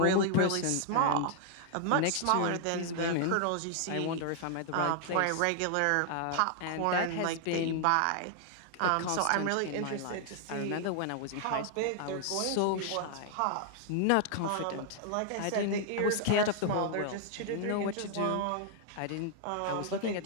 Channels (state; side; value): different; both; correlation 0.00